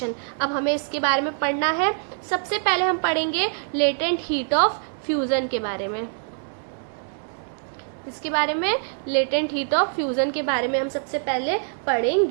अब हमें इसके बारे में पढ़ना है। सबसे पहले हम पढ़ेंगे लेटेंट हीट ऑफ फ्यूजन के बारे में। इसके बारे में, लेटेंट हीट ऑफ फ्यूजन के बारे में हम सबसे पहले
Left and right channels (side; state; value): left; silent; digital silence